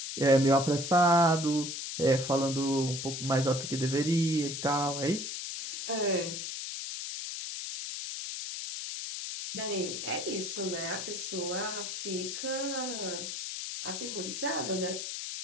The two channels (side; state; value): left; noise; hiss, 6 dB below the sound